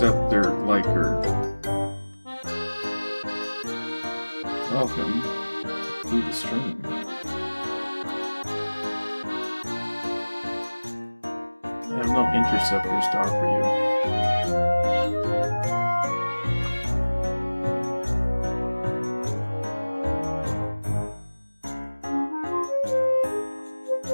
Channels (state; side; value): inverted; both; correlation -1.00